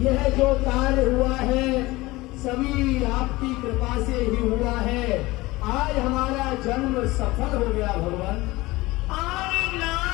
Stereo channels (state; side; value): quieter; right; 20.4 dB